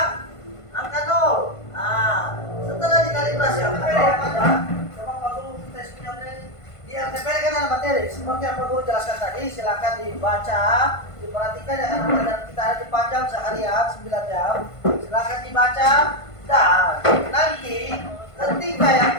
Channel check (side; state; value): right; late; 1.5 ms